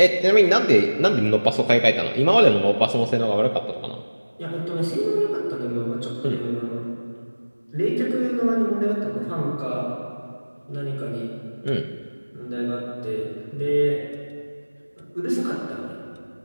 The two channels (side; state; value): both; inverted; correlation -1.00